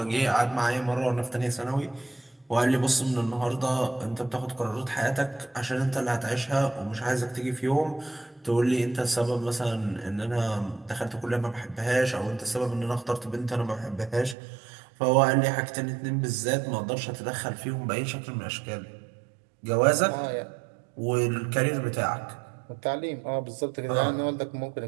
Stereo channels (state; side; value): drops out; left; at 14.4 s